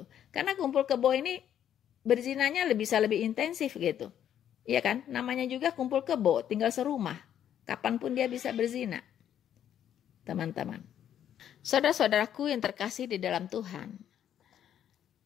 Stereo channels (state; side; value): quieter; right; 10.1 dB